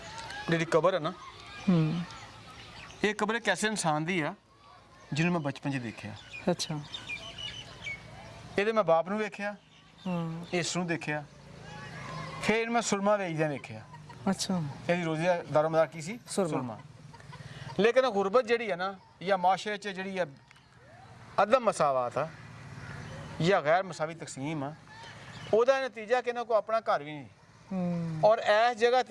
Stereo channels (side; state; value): both; identical; correlation 1.00